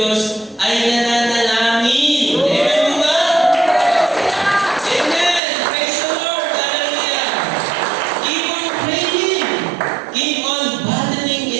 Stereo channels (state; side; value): drops out; left; at 5.4 s